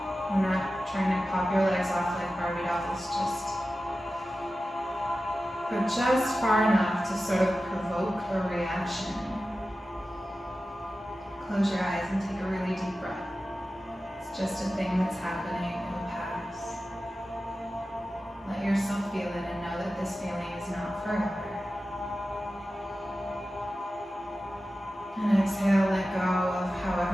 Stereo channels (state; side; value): normal; both; correlation 0.94